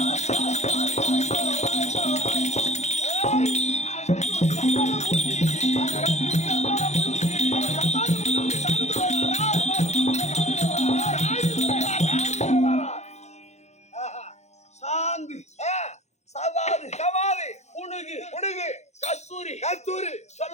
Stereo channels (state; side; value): late; right; 0.33 ms